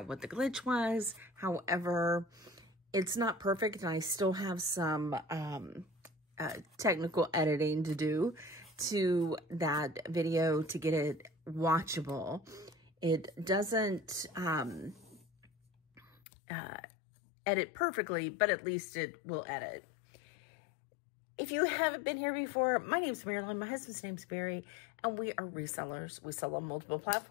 what the glitch was. However, it's not perfect, and I still have some technical editing to do to that video to get it watchable. It doesn't edit perfectly, but at least it will edit. If you haven't been here before, my name's Marilyn, my husband's name's Barry, and we are resellers. We sell on multiple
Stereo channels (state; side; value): drops out; right; at 16.1 s